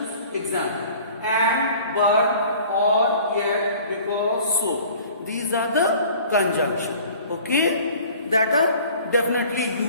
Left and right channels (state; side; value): inverted; both; correlation -0.48